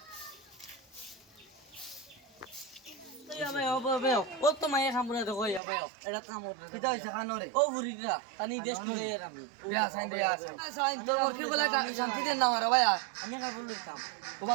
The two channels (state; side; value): drops out; left; at 5.6 s